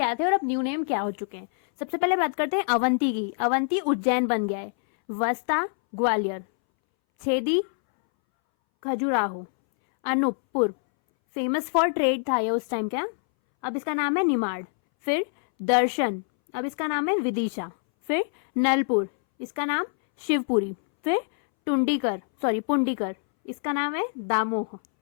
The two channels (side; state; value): right; silent; 61 dB below the other